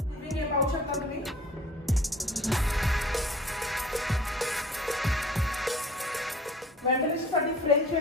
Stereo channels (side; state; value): both; normal; correlation 0.49